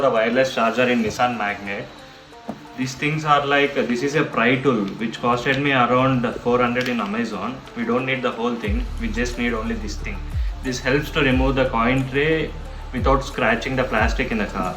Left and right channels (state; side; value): identical; both; correlation 1.00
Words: the wireless charger in Nissan Magnite. These things are like, this is a pry tool which costed me around 400 in Amazon. We don't need the whole thing, we just need only this thing. This helps to remove the coin tray without scratching the plastic in the car.